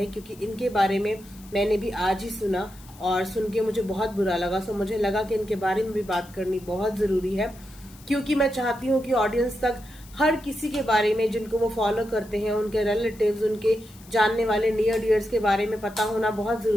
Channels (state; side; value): noise; left; hiss, 23 dB below the sound